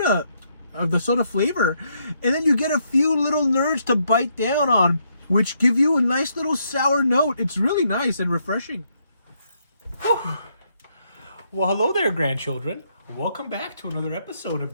flavor, and then you get a few little nerds to bite down on, which give you a nice little sour note. It's really nice and refreshing. Whew. Well, hello there, grandchildren. Welcome back to another episode of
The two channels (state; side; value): inverted; both; correlation -0.75